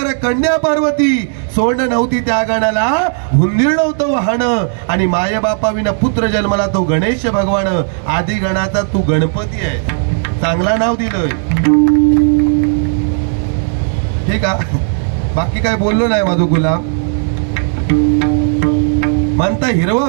कन्या पार्वती, सोंड नव्हती त्या गणाला हुंदीर नव्हतं वाहन, आणि माये बापा विना पुत्र जन्मला तो गणेश भगवान. आदी गणाचा तू गणपती आहे, चांगला नाव दिलंय. ठीक आहे, बाकी काय बोललो नाही. माझो गुलाम म्हणता हिरवा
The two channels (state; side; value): silent; left; digital silence